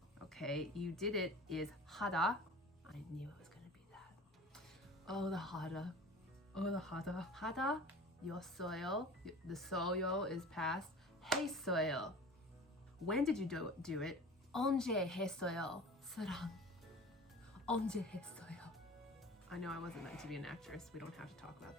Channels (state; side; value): normal; both; correlation 0.39